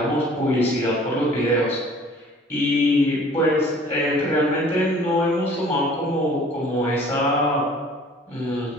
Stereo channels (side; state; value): both; normal; correlation 0.51